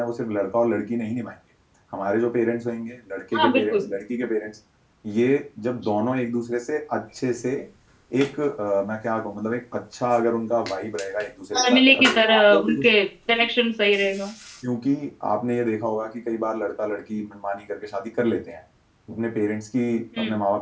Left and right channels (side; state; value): both; identical; correlation 1.00